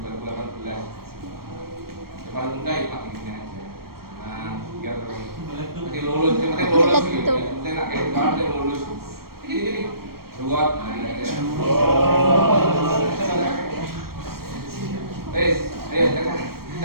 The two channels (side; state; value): left; late; 0.94 ms